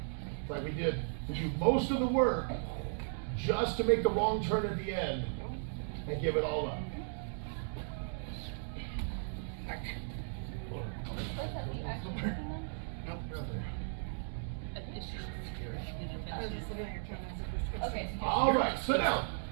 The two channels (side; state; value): left; silent; digital silence